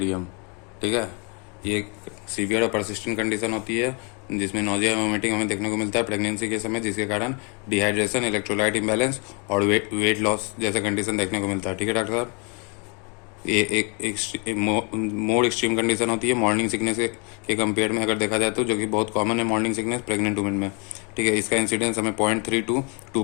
ठीक है, ये एक सीवियर और परसिस्टेंट कंडीशन होती है जिसमें नोजिया वोमिटिंग हमें देखने को मिलता है प्रेगनेंसी के समय, जिसके कारण डिहाइड्रेशन, इलेक्ट्रोलाइट इम्बैलेंस और वेट लॉस जैसा कंडीशन देखने को मिलता है। ठीक है डॉक्टर साहब, ये एक मोर एक्सट्रीम कंडीशन होती है मॉर्निंग सिकनेस के कंपेयर में अगर देखा जाए तो, जो कि बहुत कॉमन है मॉर्निंग सिकनेस प्रेग्नेंट वुमेन में। ठीक है, इसका इंसिडेंस हमें 0.3 to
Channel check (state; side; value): quieter; right; 34.8 dB